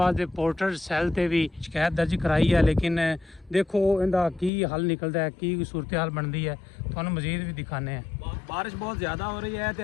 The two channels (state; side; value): drops out; right; at 4.5 s